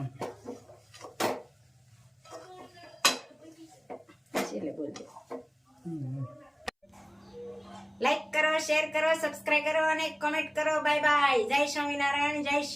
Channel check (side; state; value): both; identical; correlation 1.00